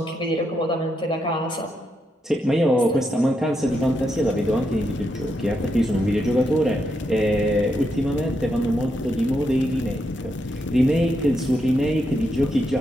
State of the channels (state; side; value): normal; both; correlation 0.82